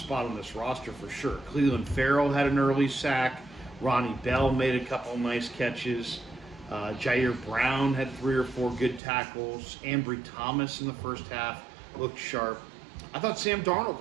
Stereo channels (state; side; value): drops out; left; at 9.0 s